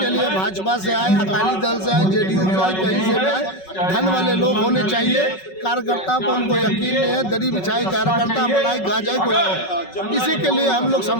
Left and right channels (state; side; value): late; right; 5.4 ms